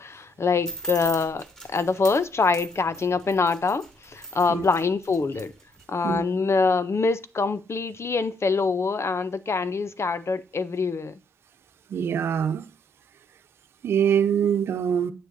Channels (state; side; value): normal; both; correlation 0.69